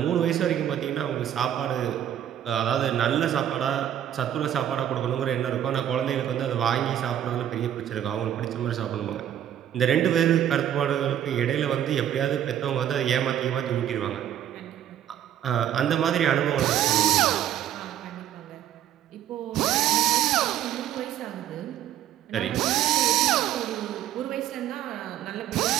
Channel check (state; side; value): quieter; left; 10.8 dB